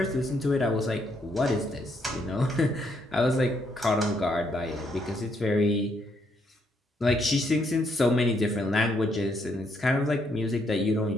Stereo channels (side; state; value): both; normal; correlation 0.74